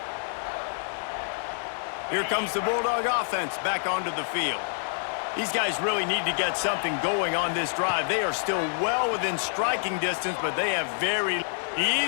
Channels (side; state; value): right; silent; digital silence